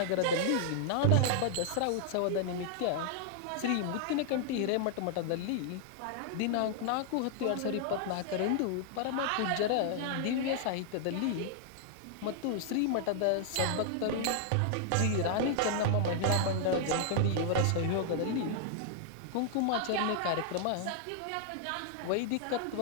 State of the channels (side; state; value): both; different; correlation -0.01